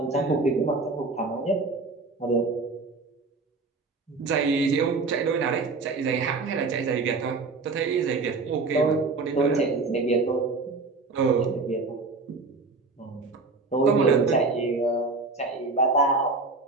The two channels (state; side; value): quieter; left; 3.8 dB